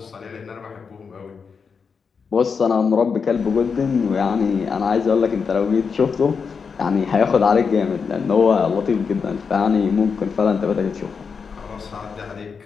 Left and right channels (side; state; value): right; quieter; 5.7 dB